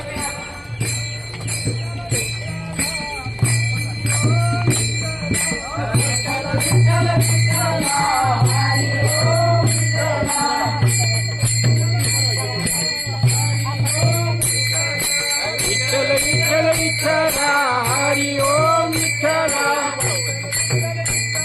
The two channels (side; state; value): both; identical; correlation 1.00